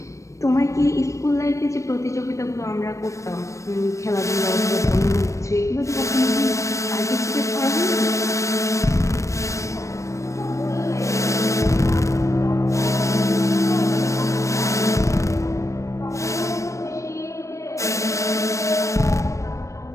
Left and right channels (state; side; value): late; right; 0.15 ms